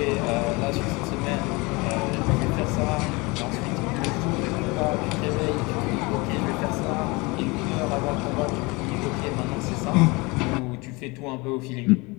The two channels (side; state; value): right; quieter; 25.6 dB